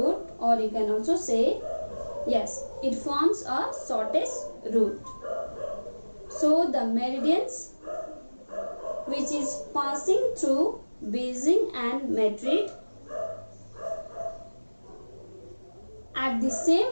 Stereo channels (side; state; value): both; inverted; correlation -1.00